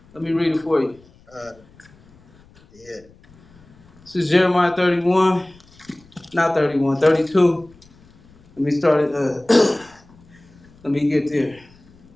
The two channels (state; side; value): noise; left; rumble, 27 dB below the sound